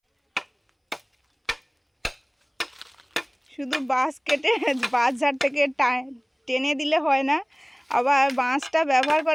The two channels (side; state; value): both; identical; correlation 1.00